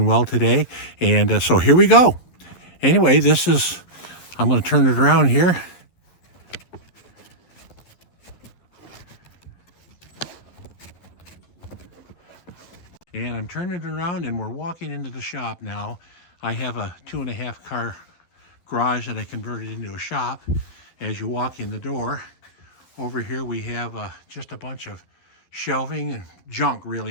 well today. And so here we go. Anyway, I'm going to turn it around here. And I'm turning it around and we're walking into the shop now. I have a 2.5 car garage that I converted into a shop. As you walk in the door, over here we have just a bunch of shelving and junk,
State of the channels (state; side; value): late; right; 11 ms